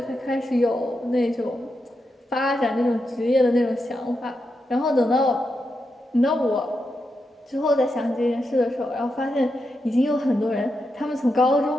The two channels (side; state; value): both; normal; correlation 0.86